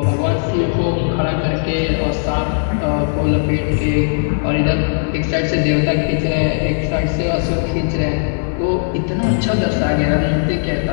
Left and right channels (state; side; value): silent; right; 68 dB below the other